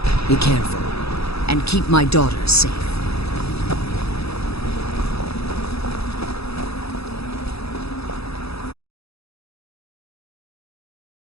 Be careful, and keep my daughter safe.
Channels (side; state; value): right; late; 0.78 ms